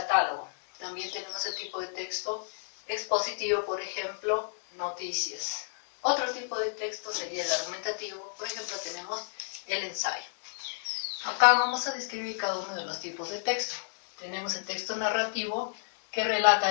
También tenemos el tipo de texto expositivo, por ejemplo, noticias. Otro tipo de texto sería el argumentativo, por ejemplo, tenemos el ensayo. Acá vamos a describir cada uno de los tipos de texto. Tenemos el texto narrativo, que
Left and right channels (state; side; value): silent; right; digital silence